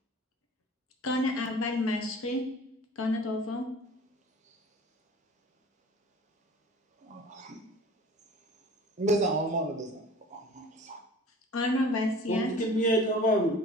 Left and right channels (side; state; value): both; normal; correlation 0.44